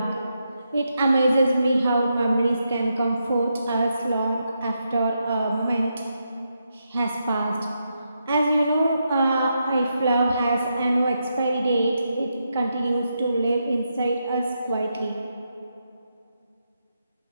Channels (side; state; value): both; inverted; correlation -0.83